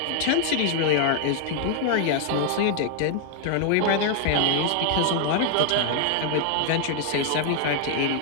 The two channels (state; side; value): different; both; correlation 0.00